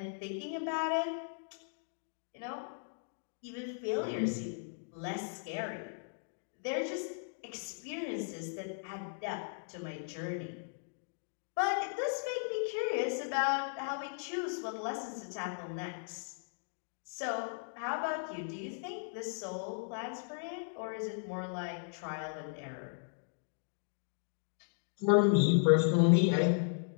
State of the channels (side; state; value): right; silent; digital silence